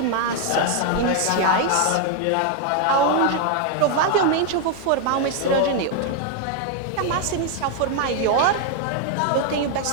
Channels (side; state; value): both; different; correlation 0.00